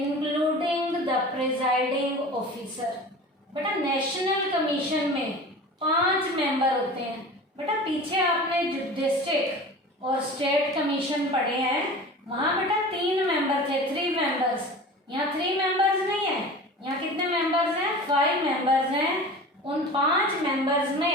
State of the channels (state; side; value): normal; both; correlation 0.37